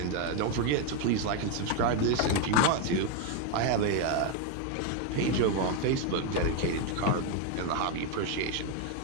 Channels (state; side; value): different; both; correlation 0.01